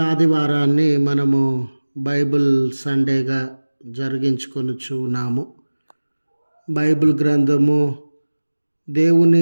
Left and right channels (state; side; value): inverted; both; correlation -1.00